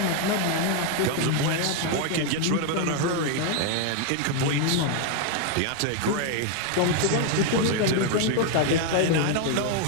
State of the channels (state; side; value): different; both; correlation 0.01